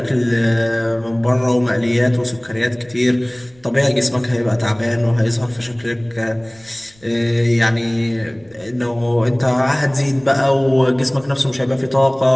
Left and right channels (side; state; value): right; noise; rumble, 30 dB below the sound